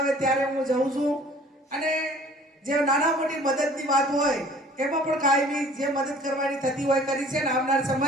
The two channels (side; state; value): both; normal; correlation 0.51